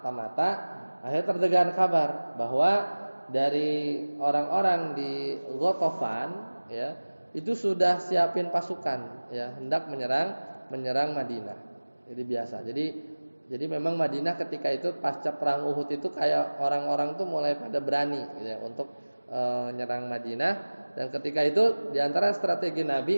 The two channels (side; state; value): both; inverted; correlation -1.00